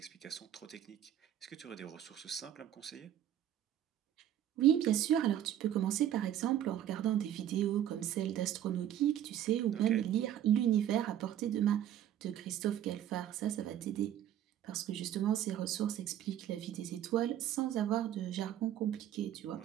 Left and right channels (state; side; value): quieter; left; 11.0 dB